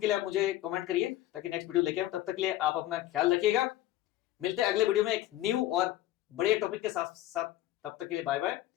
लिए आप मुझे कमेंट करिए ताकि नेक्स्ट वीडियो लेके आऊं। तब तक के लिए आप अपना ख्याल रखिएगा। मिलते हैं अगले वीडियो में एक न्यू और बढ़िया टॉपिक के साथ साथ। तब तक के लिए बाय बाय,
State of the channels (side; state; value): right; quieter; 14.5 dB